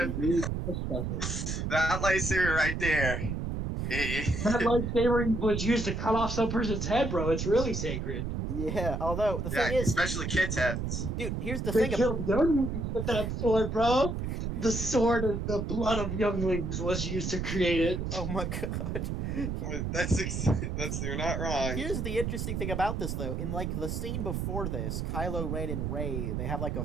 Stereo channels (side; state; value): right; noise; rumble, 2 dB below the sound